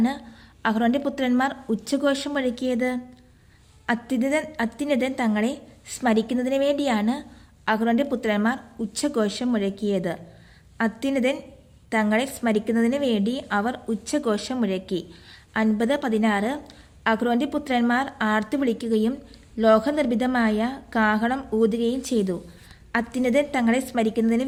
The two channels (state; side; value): identical; both; correlation 1.00